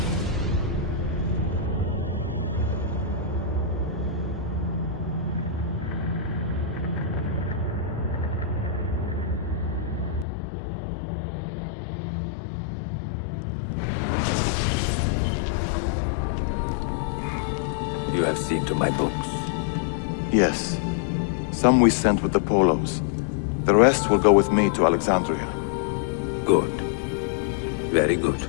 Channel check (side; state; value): right; drops out; at 10.2 s